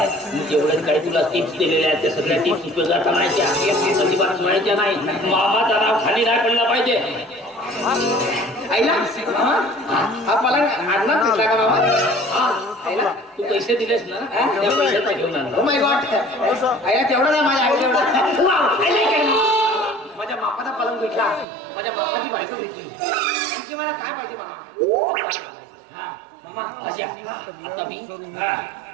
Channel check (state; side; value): drops out; left; at 21.5 s